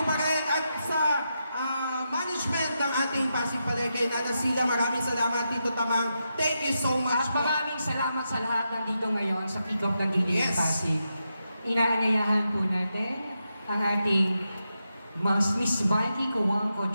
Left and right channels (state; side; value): inverted; both; correlation -0.86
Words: pa rin, at sa management ng ating Pasig Palengke, Nana Sila, maraming salamat. Tito Tamang, thank you so much. At maraming salamat sa lahat nandito ngayon sa kick-off ng Giling Yes. Pasig. Inaanyayahan po natin ang ating Miss Mikey